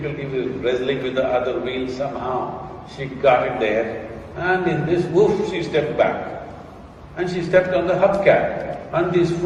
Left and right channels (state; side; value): identical; both; correlation 1.00